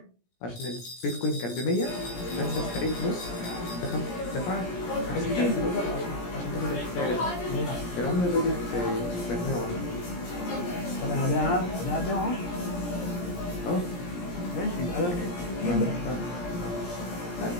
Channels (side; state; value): right; late; 17 ms